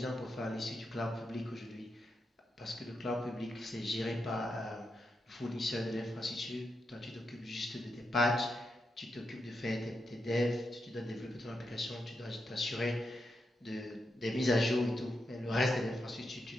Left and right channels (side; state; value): both; normal; correlation 0.85